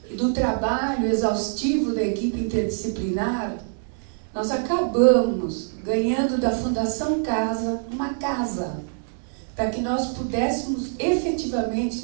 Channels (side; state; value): left; silent; 62 dB below the other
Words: e do trabalho exaustivo da equipe interdisciplinar, nós acabamos ganhando da Fundação Casa uma casa, para que nós pudéssemos